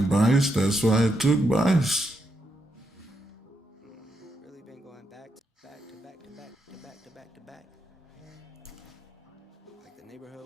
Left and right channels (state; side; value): normal; both; correlation 0.82